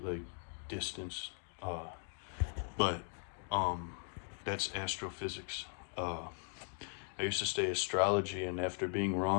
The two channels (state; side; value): silent; right; 52 dB below the other